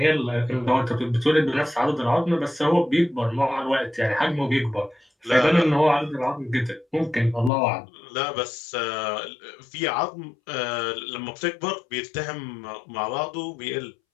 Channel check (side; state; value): right; drops out; at 7.5 s